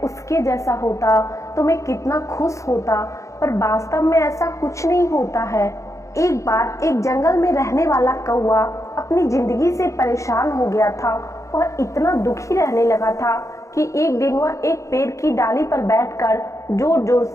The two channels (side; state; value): right; late; 0.15 ms